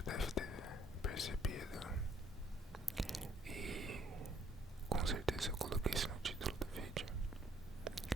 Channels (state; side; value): normal; both; correlation 0.64